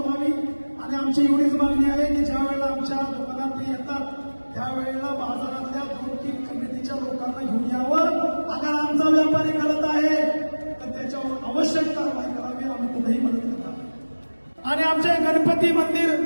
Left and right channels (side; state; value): both; inverted; correlation -1.00